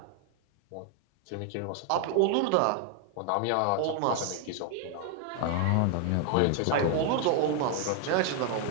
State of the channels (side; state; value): both; different; correlation 0.00